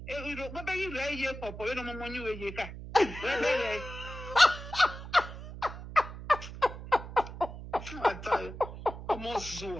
What about you? Lay here, papa. You know, mama, you here. I tell you, I'm all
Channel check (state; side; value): noise; right; hum, 11 dB below the sound